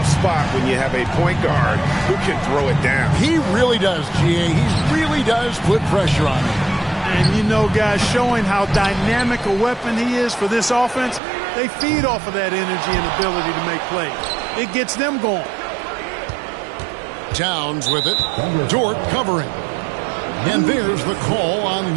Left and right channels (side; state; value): left; drops out; at 11.2 s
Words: spot when you have a point guard who can throw it down. He really does, GA. He really does put pressure on him. And you know, guys, showing how dynamic a weapon he is for this offense, they feed off of that energy and ability to make plays. It gets them going. Towns with it. Dort covering. And there's the call on